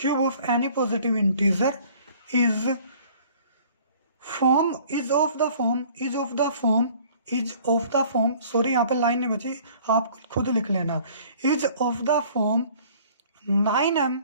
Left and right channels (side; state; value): both; inverted; correlation -0.53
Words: of any positive integer is of the form, sorry यहाँ पे लाइन नहीं बची, आप खुद लिख लेना, is of the form 9m